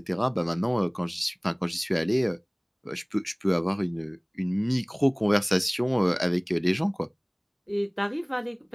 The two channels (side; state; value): both; identical; correlation 1.00